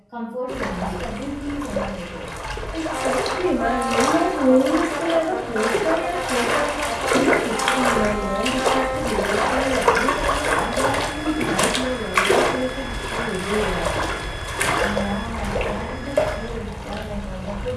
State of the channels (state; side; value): identical; both; correlation 1.00